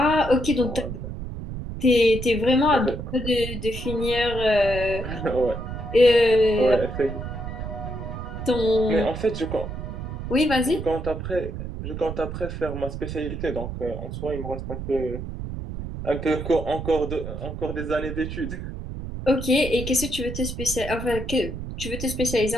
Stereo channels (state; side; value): noise; right; rumble, 7 dB below the sound